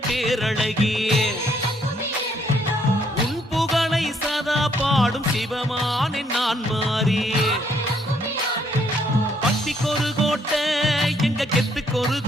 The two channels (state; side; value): normal; both; correlation 0.69